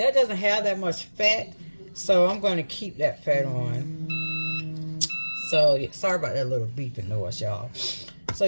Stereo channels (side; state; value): both; inverted; correlation -1.00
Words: doesn't have that much fat, so I'm going to keep that fat on. So, yeah, sorry about that little beeping noise, y'all. So,